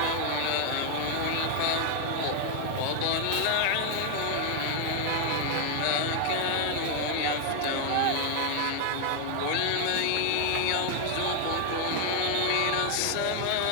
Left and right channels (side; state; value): both; different; correlation 0.00